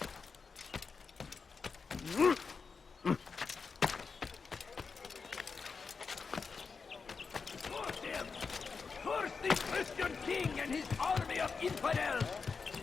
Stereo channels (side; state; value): right; quieter; 5.1 dB